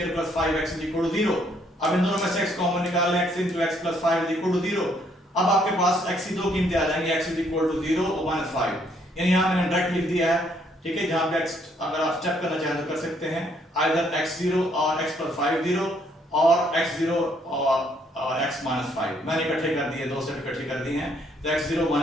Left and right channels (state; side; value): normal; both; correlation 0.68